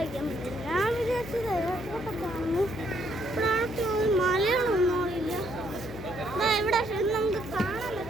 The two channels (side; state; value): left; noise; hum, 14 dB below the sound